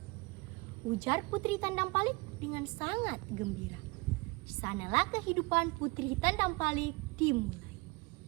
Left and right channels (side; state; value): left; quieter; 26.4 dB